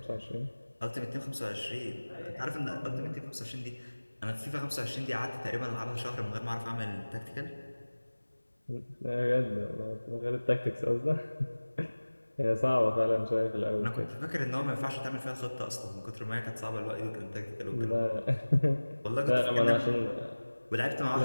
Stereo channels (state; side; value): inverted; both; correlation -1.00